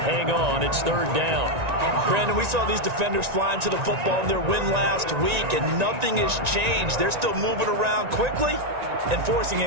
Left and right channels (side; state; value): left; late; 1.9 ms